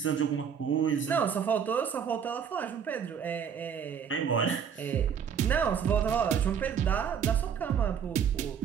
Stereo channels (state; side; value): quieter; left; 7.5 dB